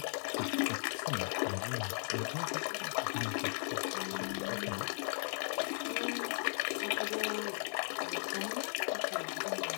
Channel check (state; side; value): silent; right; digital silence